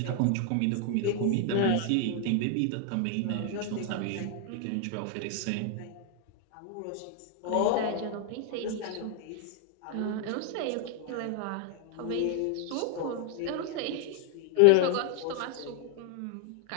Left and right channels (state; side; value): different; both; correlation 0.00